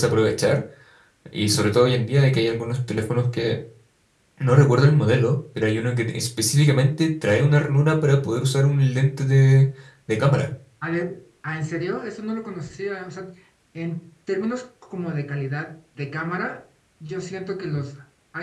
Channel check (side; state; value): both; identical; correlation 1.00